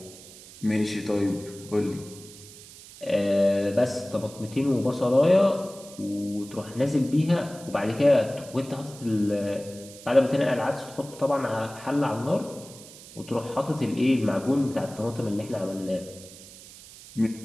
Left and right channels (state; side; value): noise; right; hiss, 18 dB below the sound